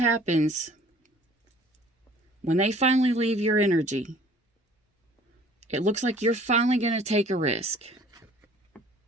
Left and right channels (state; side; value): normal; both; correlation 0.52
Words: when they finally leave your energy, it looks like you're finally going to take a risk.